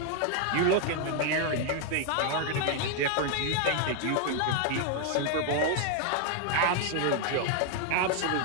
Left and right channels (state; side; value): different; both; correlation 0.00